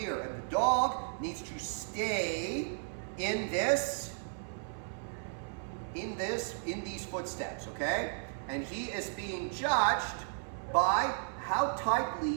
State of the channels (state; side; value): silent; left; 55 dB below the other